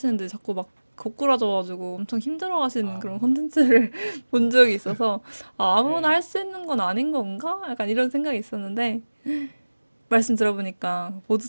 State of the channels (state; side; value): inverted; both; correlation -1.00